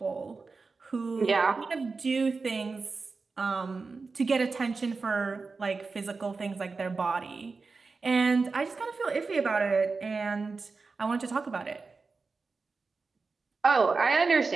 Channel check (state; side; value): quieter; left; 4.3 dB